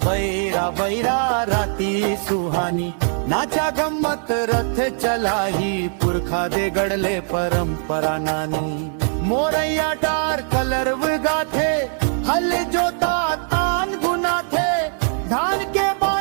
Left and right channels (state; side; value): silent; left; 56 dB below the other